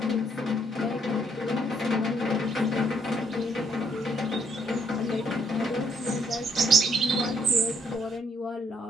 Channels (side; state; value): both; normal; correlation 0.71